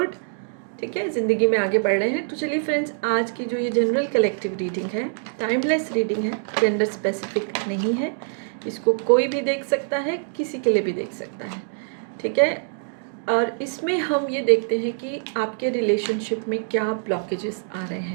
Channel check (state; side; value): silent; left; digital silence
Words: ठीक है, ज़िंदगी में आगे बढ़ रहे हैं। तो चलिए फ्रेंड्स, आज की जो ये जनरल कलेक्टिव रीडिंग है, टाइमलेस रीडिंग है, जेंडर स्पेसिफिक नहीं है। इसको कोई भी देख सकता है, किसी के लिए भी देख सकता है। ठीक है, और इसमें हम ये देखते हैं कि आपके रिलेशनशिप में क्या ब्लॉकेजेस आ रहे